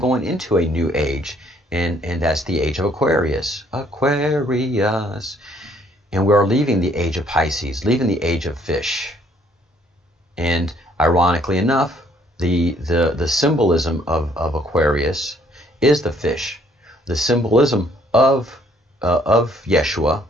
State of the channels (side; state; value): both; normal; correlation 0.64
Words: into a new age. And that's the age of Aquarius. Aquarius. And we are leaving the age of Pisces, leaving the age of fish. And ironically enough, the symbolism of Aquarius is the fish. The symbolism of Yeshua,